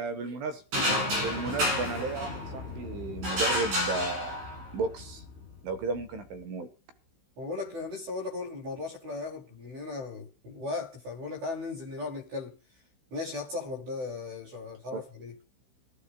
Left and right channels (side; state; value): left; late; 16 ms